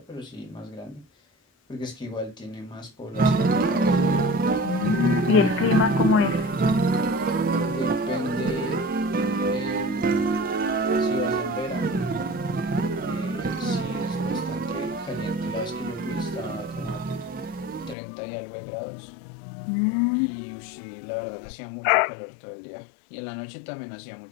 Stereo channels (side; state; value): right; drops out; at 17.9 s